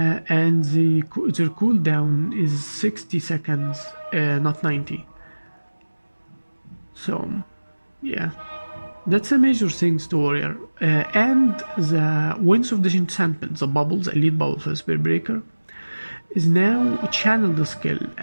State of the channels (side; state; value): both; inverted; correlation -1.00